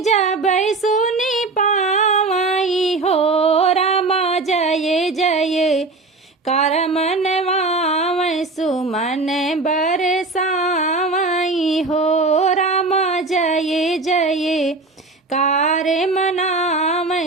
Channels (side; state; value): left; quieter; 3.5 dB